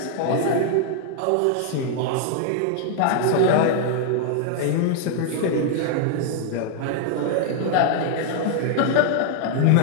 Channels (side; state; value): both; different; correlation 0.00